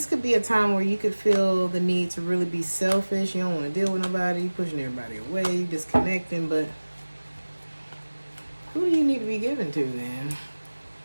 could be a time where you could feel the need to really be selfish. You don't want to deal with nobody. Pushing everybody away. Disconnecting. But who do you need to be giving to then?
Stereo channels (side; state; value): both; inverted; correlation -1.00